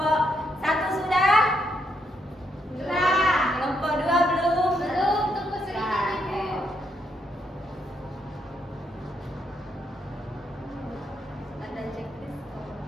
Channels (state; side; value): normal; both; correlation 0.77